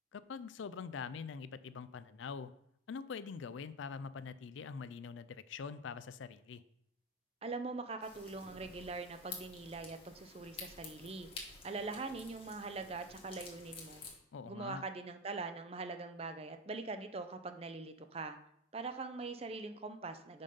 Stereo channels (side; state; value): both; normal; correlation 0.17